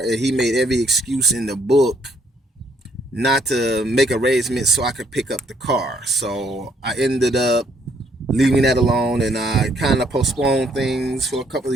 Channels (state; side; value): normal; both; correlation 0.68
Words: he made every excuse in the book not to make arrangements so I could pick up the car. So I ended up leaving that alone, and I kind of postponed things for a couple